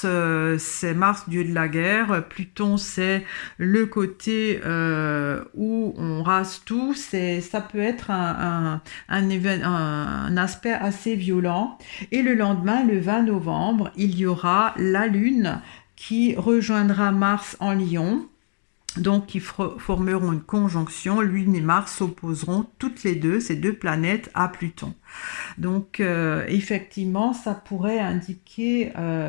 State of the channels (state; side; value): silent; right; digital silence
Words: c'est Mars dieu de la guerre, Pluton c'est le côté où on rase tout, ça peut être un aspect assez violent, et le lendemain, le 20 novembre, il y aura la Lune qui rejoindra Mars en Lion, donc qui formeront une conjonction. Lune et Mars s'opposeront toutes les deux, ces deux planètes, à Pluton. Donc effectivement, ça pourrait indiquer